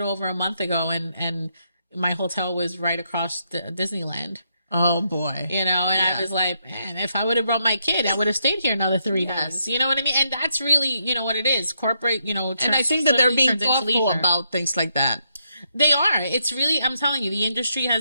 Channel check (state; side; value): inverted; both; correlation -0.78